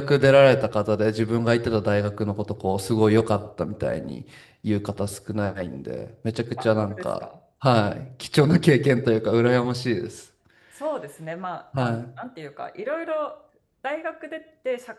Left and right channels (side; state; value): both; identical; correlation 1.00